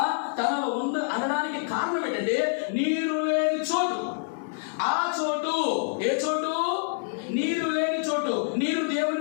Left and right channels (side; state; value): right; silent; digital silence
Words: తనలో అనడానికి కారణం ఏంటంటే నీరు లేని చోటు. ఆ చోటు ఏ చోటు? నీరు లేని చోటు. నీరు